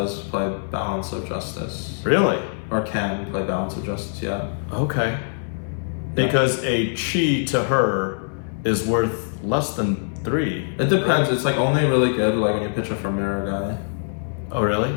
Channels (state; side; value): silent; right; digital silence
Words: play Balance of Justice. Really? Or can play Balance of Justice, yeah. Okay. Because a chi to her is worth less than 3. It depends. Right? It's like only really good like when you pitch her for Mirror Guy. Oh really?